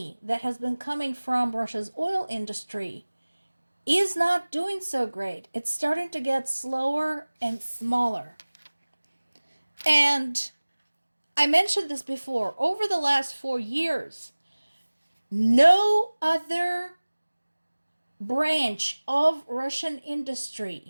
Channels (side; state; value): both; inverted; correlation -1.00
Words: that has been coming from Russia's oil industry is not doing so great. It's starting to get slower and smaller. And I mentioned this before. Over the last 4 years, no other branch of Russian